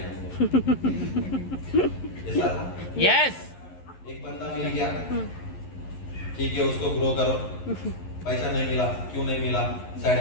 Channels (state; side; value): late; right; 11 ms